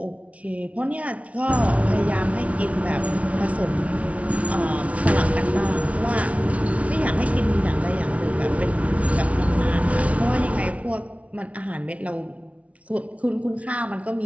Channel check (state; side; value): late; left; 0.065 ms